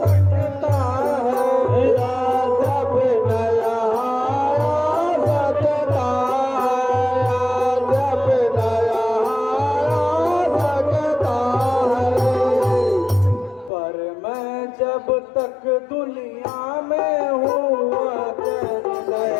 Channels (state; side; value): drops out; right; at 13.7 s